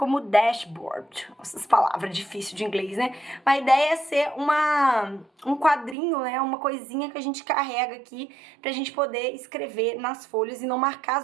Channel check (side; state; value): left; drops out; at 6.0 s